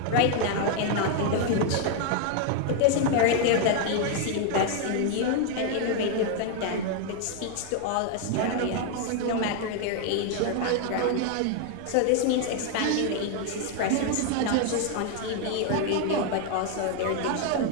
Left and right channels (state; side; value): different; both; correlation 0.00